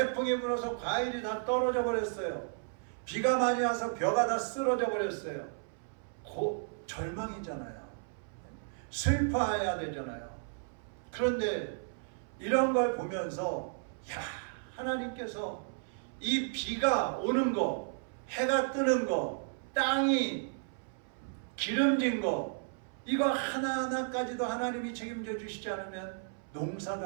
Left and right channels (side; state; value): left; silent; 55 dB below the other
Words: 불어서 과일이 다 떨어져 버렸어요. 비가 많이 와서 벼가 다 쓰러져 버렸어요. 절망이잖아요. 슬퍼해야 되잖아요. 그런데 이런 걸 보면서, 야, 하나님께서 이 비가 오는 거, 해가 뜨는 거, 땅이 기름진 거, 이거 하나하나까지도 하나님이 책임져 주시지 않으면 농사도